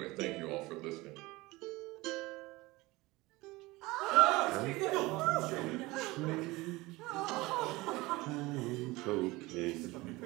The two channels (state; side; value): quieter; left; 21.2 dB